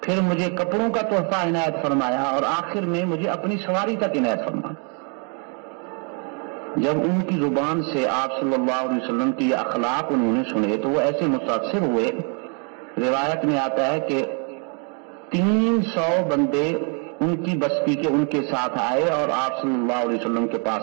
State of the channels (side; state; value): left; quieter; 38.3 dB